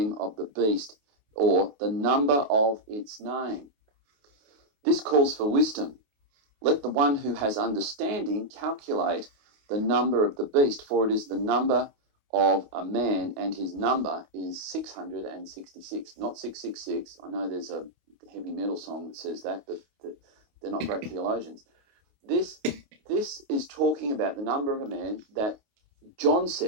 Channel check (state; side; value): late; left; 28 ms